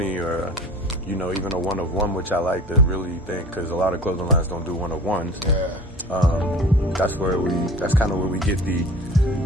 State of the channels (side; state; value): both; normal; correlation 0.41